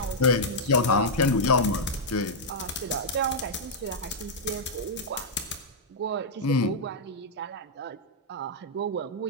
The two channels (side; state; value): both; normal; correlation -0.06